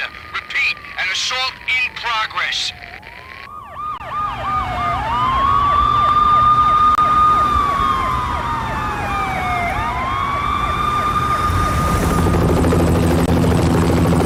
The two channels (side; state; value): both; identical; correlation 1.00